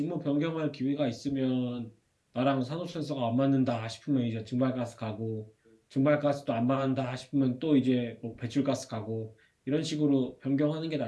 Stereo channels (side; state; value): both; identical; correlation 1.00